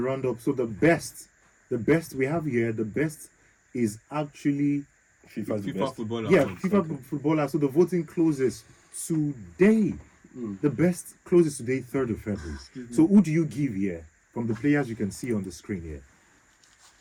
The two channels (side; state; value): both; identical; correlation 1.00